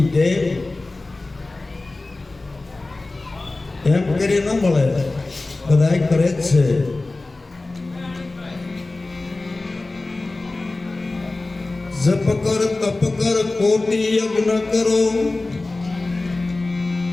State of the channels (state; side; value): quieter; right; 3.2 dB